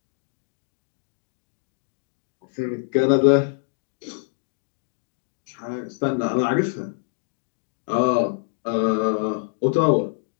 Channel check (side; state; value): right; silent; digital silence